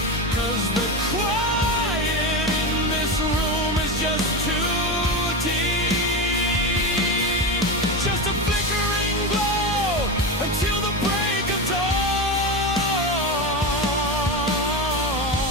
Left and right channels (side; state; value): both; normal; correlation 0.18